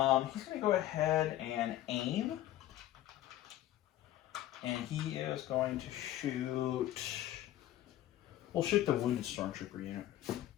gonna go ahead and aim, and he is going to shoot. We'll shoot the wounded stormtrooper unit.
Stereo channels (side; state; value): right; quieter; 13.6 dB